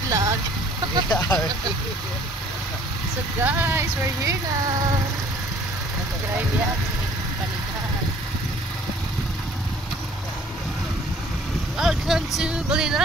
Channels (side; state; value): both; normal; correlation 0.55